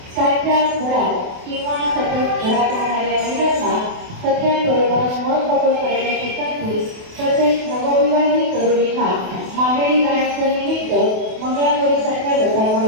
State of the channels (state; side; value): late; left; 28 ms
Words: साध्या घरात किंवा सतत घरात राहणाऱ्या महिलांना सगळ्यांबरोबर मन मोकळं करण्याची संधी तसेच नवविवाहित तरुणींना माहेरी जाण्याचं निमित्त मंगळागौरीसारख्या